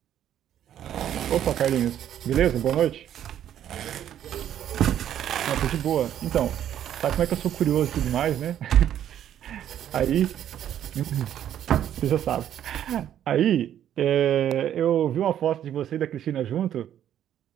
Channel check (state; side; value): quieter; left; 10.6 dB